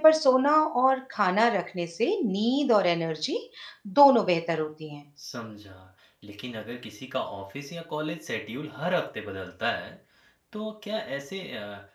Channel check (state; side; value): identical; both; correlation 1.00